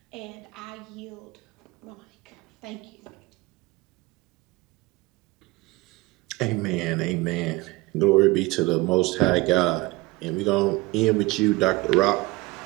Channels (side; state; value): left; quieter; 21.6 dB